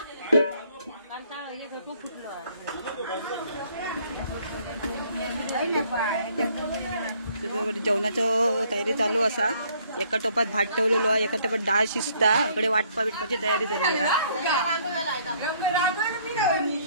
जेवणाचं तयारी चालू असा. एका टोपात भात ठेवलेलो आहे, एका टोपात डाळ शिजता, इकडे वाटपा बिटपाची तयारी झाली आहे.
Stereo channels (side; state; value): both; inverted; correlation -0.63